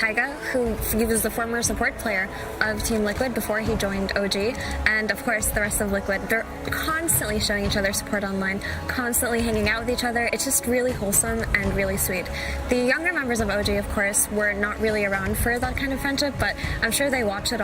who he was the former support player of Team Liquid before he joined OG, and of course the rest of Liquid. They're constantly showing each other support online, constantly hanging out with each other. It's just really wholesome and really sweet. The younger members of OG, of course, were not really around for that kind of friendship, but I'm sure they watch it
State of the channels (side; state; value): both; identical; correlation 1.00